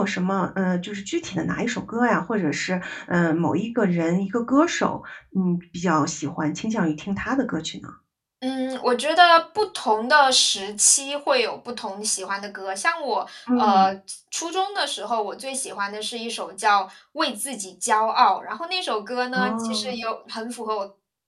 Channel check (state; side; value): identical; both; correlation 1.00